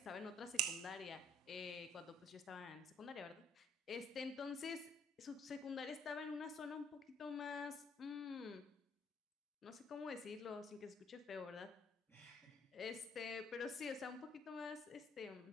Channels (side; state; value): both; normal; correlation 0.61